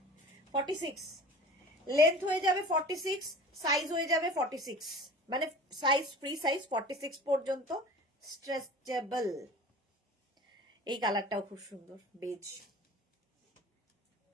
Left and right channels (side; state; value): both; normal; correlation 0.40